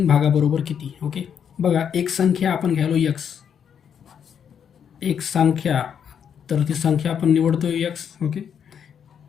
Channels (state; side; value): quieter; right; 8.0 dB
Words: भागाबरोबर किती? ओके, बघा एक संख्या आपण घ्यायलो x, एक संख्या, तर ती संख्या आपण निवडतोय x. ओके,